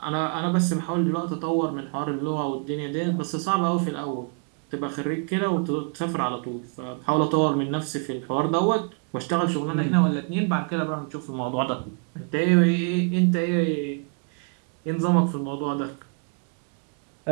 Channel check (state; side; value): quieter; left; 37.4 dB